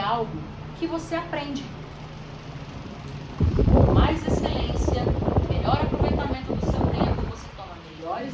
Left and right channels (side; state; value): both; identical; correlation 1.00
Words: que você aprende. Com mais excelência, melhor aproveitamento do seu tempo, você toma melhores